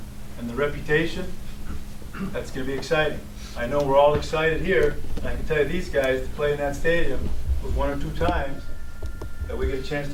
and the reputation. That's going to be exciting. I know we're all excited here, and I can tell you these guys to play in that stadium was 1 or 2 times that we get a chance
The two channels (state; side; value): identical; both; correlation 1.00